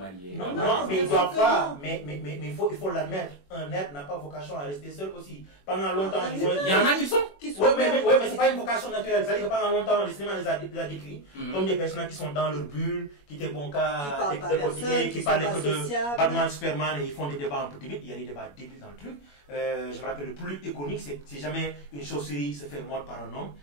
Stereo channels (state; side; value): late; right; 21 ms